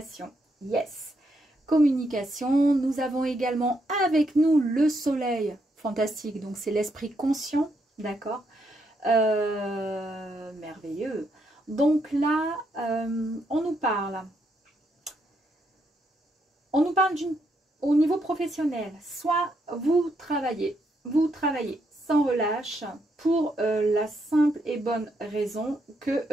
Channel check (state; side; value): normal; both; correlation 0.77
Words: Yes. Communication. Nous avons également avec nous le soleil. Fantastique. Donc, c'est l'esprit conscient. D'accord. Merveilleux. Donc là, on nous parle. On nous parle au niveau professionnel. Soit vous travaillez sans relâche pour la simple et bonne raison que